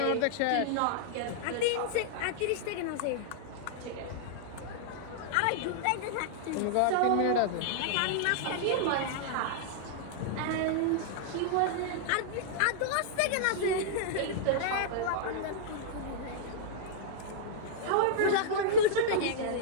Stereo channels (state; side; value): different; both; correlation -0.01